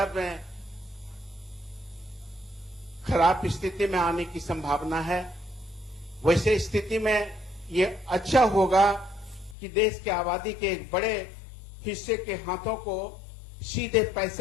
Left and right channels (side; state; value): right; drops out; at 9.6 s